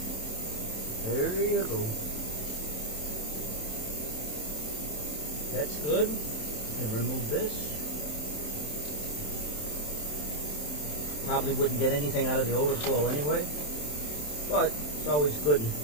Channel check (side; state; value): right; late; 27 ms